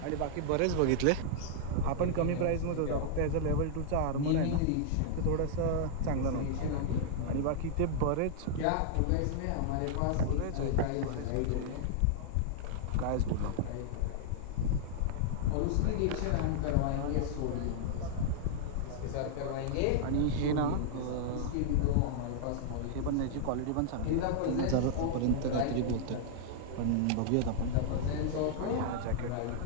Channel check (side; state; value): both; different; correlation -0.01